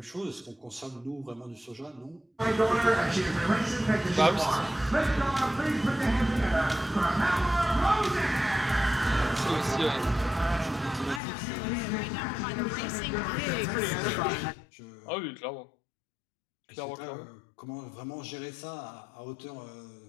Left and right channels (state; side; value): drops out; right; at 11.2 s